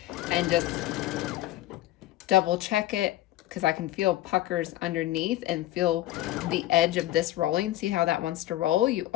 and just double check it because I can feel puckers underneath and feel the edge of this rolling. See how that wants to roll? You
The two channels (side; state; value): right; quieter; 15.3 dB